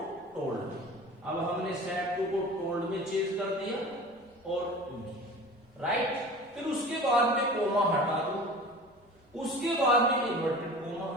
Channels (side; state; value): both; normal; correlation 0.39